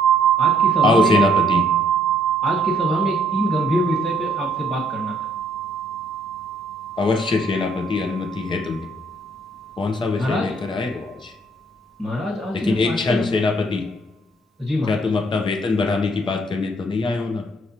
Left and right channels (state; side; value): normal; both; correlation 0.65